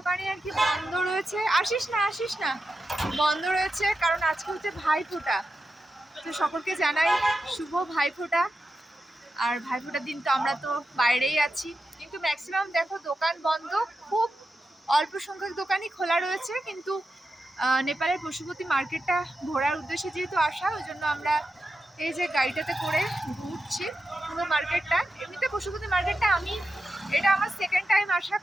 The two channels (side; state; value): both; normal; correlation 0.89